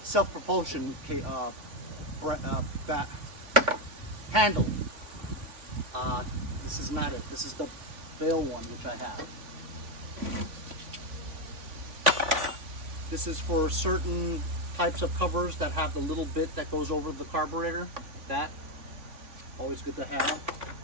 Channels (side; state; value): left; late; 3.5 ms